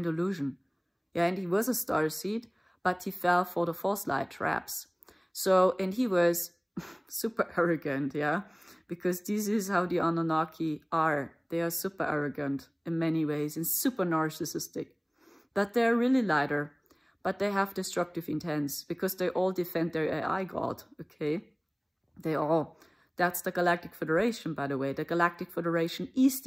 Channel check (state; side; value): identical; both; correlation 1.00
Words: illusion. Yeah, and he was a starseed. But he fell for the false light traps. So, and he was super arrogant, yeah? Because this is how the Anunnaki are. They are super arrogant in many ways and super narcissistic. But they're really lighter. But they have destructive intents because they all defend their AI god, okay? They all. That's the Galactic Federation, by the way. The Galactic Federation is